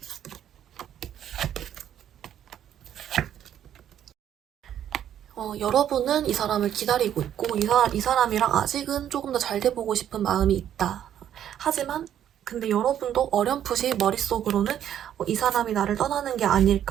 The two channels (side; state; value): left; quieter; 10.3 dB